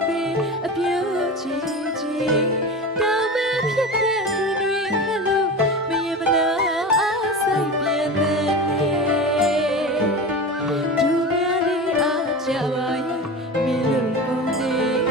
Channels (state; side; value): normal; both; correlation 0.28